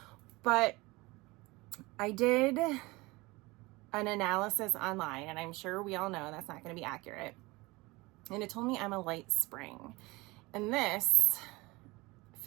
But I did an analysis online, and I'm sure we all know that's not going to be accurate. And it told me I'm a light spring, and this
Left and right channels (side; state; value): left; quieter; 22.8 dB